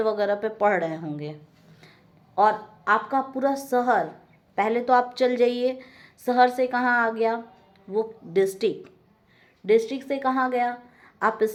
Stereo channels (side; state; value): both; identical; correlation 1.00